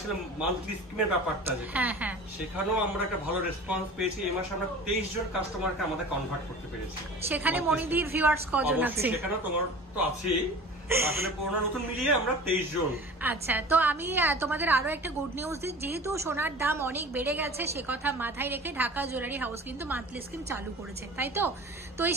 মান্থলি স্কিমের ব্যাপারটা, হ্যাঁ হ্যাঁ, সেখানেও আমরা একটা ভালো রেসপন্স পেয়েছি। এই মাসে আমরা 23 জন কাস্টমারকে আমাদের কনভার্ট করতে পেরেছি। সেখানে মনিদির ভিউয়ার্স কজন আছে? সেখানে তোমার তো আছেই, আসলে পুরনো নতুন মিলিয়ে আমরা 23 জন। আচ্ছা, তো আমি তোমাদের আরো একটা গুড নিউজ দিই। যেহেতু সোনার দাম অনেক বেড়ে গেছে, সে কথা মাথায় রেখে ঢাকা জুয়েলারি হাউস কিন্তু মান্থলি স্কিম চালু করেছে, তাই তো? তো এই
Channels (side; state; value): both; normal; correlation 0.39